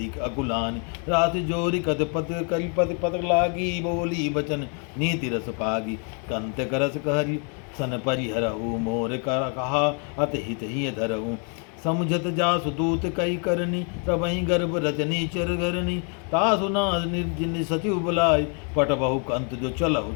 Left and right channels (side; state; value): right; quieter; 39.7 dB